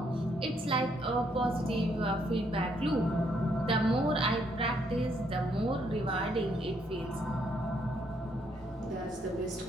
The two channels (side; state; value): both; normal; correlation 0.72